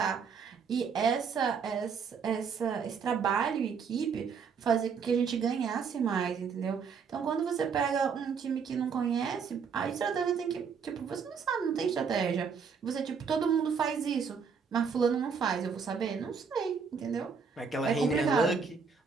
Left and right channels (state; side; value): quieter; left; 6.0 dB